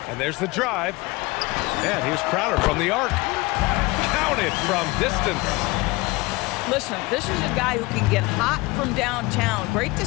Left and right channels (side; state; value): right; quieter; 22.7 dB